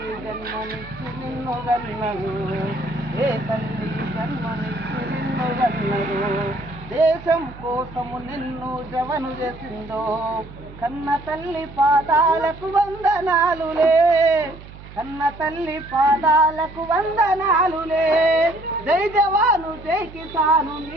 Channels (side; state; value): right; noise; hum, 17 dB below the sound